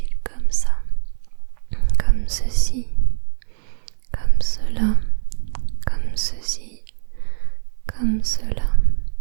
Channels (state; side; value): silent; left; 65 dB below the other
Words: comme ça. Comme ceci. Comme cela. Comme ceci. Comme cela.